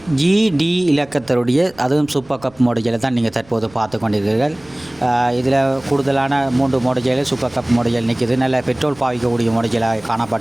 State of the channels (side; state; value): right; noise; rumble, 27 dB below the sound